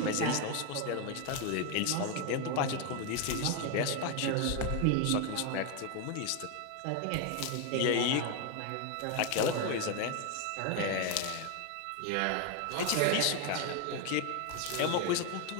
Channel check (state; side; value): different; both; correlation 0.01